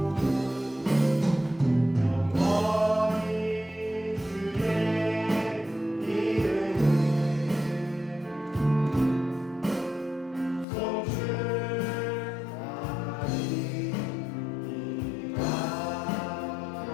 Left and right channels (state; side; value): drops out; right; at 10.7 s